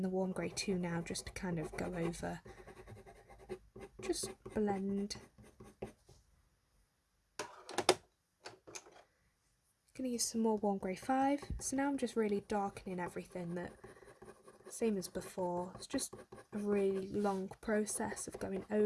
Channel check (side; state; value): both; identical; correlation 1.00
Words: the warm grey 2 now just to kind of go over, just blend. Going to use some more warm grey 5. So now I'm just really darkening everything, that same as before. It's just a really long process of going